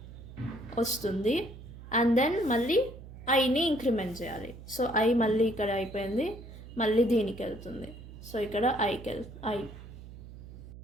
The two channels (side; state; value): right; noise; hum, 15 dB below the sound